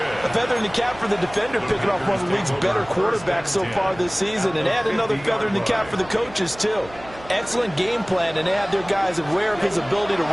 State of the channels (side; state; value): right; noise; hum, 19 dB below the sound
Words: feather in the cap for the defender, picking off one of the league's better quarterbacks so far this season. And add another feather in the cap for the coaches, too. Excellent game plan, and they had their guys aware of his ability to